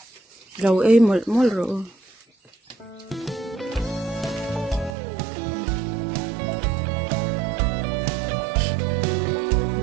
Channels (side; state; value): left; drops out; at 5.0 s